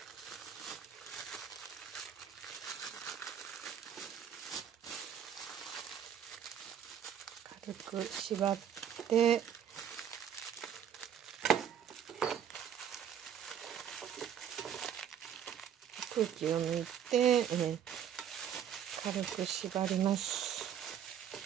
軽く縛って空気を抜いて、軽く縛ります。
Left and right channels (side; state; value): left; quieter; 9.0 dB